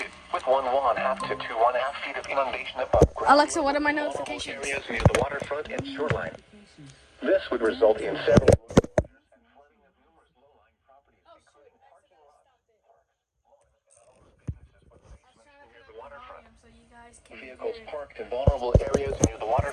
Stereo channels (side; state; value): both; identical; correlation 1.00